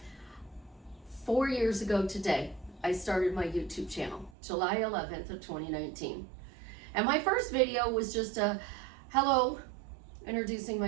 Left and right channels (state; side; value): drops out; left; at 4.3 s